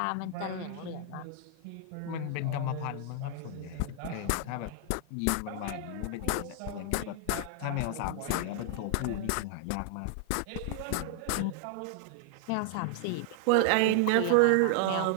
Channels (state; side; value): different; both; correlation 0.00